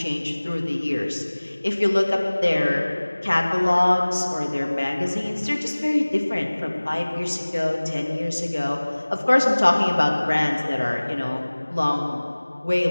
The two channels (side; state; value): both; inverted; correlation -1.00